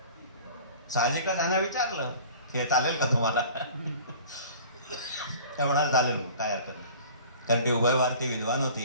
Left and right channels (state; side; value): inverted; both; correlation -0.45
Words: साहजिकच ह्यानं विचारलं की हे चालेल का तुम्हाला? ते म्हणाल चालेल, काय हरकत नाही. कारण ती उभयभारती विद्वान